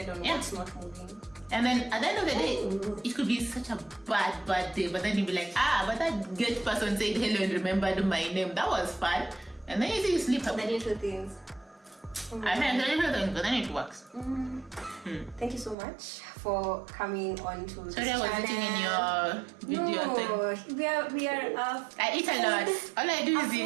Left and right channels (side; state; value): left; drops out; at 15.8 s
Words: on what's not moving. And then at the end of the day, it could be such a bad day, but then you'll be like, but that good person said hello and remembered my name. That was fun. And then you see you sleep up. The little things. I mean, the little things, but then it works. Thank you so much for coming on to this channel. Sorry, I was eating in your video thing. We are I eat a lot. All I do is